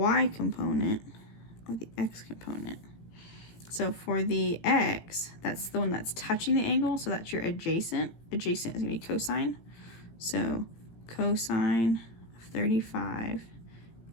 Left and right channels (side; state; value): right; late; 18 ms